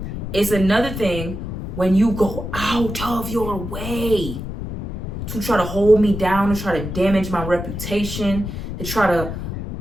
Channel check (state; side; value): noise; left; rumble, 6 dB below the sound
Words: It's another thing when you go out of your way to try to hold me down, to try to damage my reputation, to try to